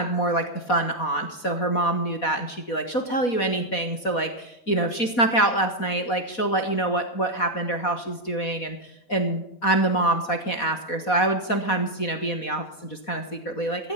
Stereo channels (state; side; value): late; right; 4.1 ms